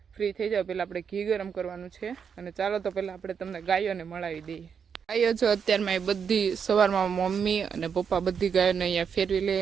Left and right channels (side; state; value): left; quieter; 6.9 dB